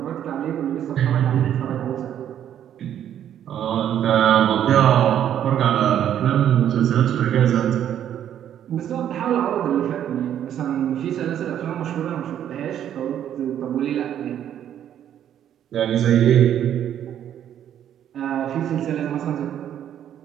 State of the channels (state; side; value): quieter; left; 10.3 dB